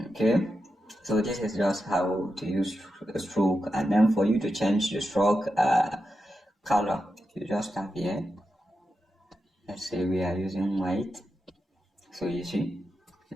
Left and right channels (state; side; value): normal; both; correlation 0.89